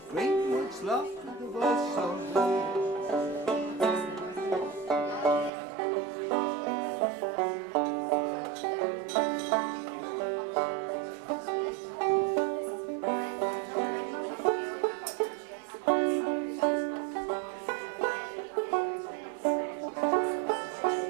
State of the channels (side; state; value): left; drops out; at 5.5 s